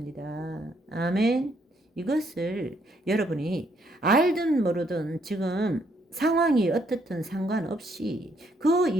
아멘. 이것을 여러분이 알든 모르든 지금 상황이 어떻든 상관없이 그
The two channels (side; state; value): both; normal; correlation 0.71